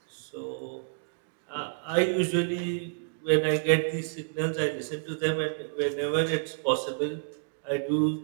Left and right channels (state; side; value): silent; left; digital silence